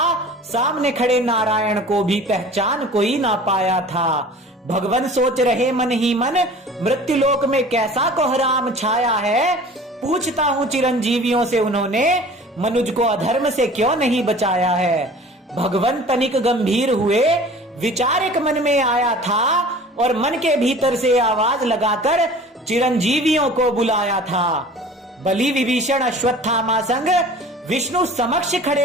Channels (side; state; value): both; normal; correlation 0.44